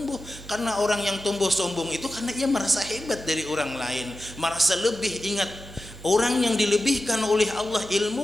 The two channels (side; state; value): both; normal; correlation 0.93